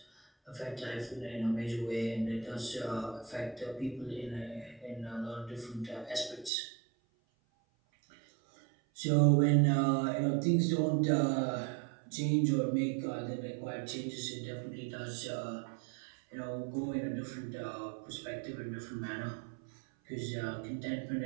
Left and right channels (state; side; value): drops out; left; at 6.5 s